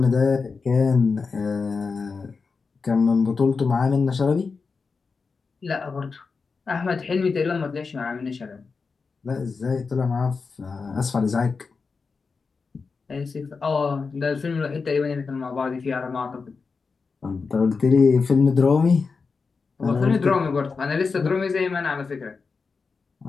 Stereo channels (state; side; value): quieter; right; 4.8 dB